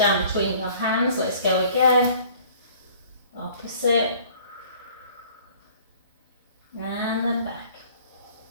between your hands. Let's go again. Opposite. And then back.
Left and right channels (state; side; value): inverted; both; correlation -0.53